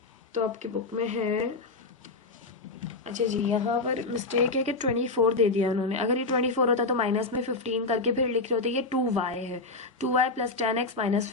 तो आपकी बुक में है, अच्छा जी, यहाँ पर मिस्टेक है कि 24 दे दिया उन्होंने। अगर ये 24 होता तो माइनस में 15 करके फिर लिख रहे होते। ये 2y है, 2y प्लस 10x माइनस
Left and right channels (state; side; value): quieter; right; 3.5 dB